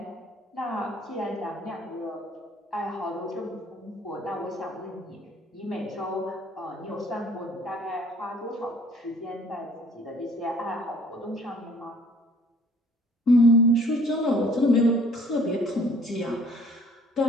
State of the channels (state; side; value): normal; both; correlation 0.56